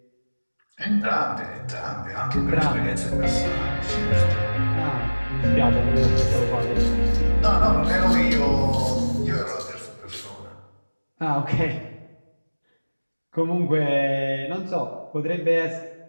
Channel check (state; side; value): inverted; both; correlation -1.00